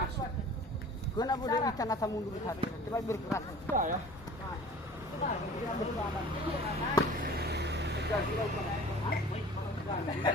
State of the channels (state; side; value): normal; both; correlation 0.44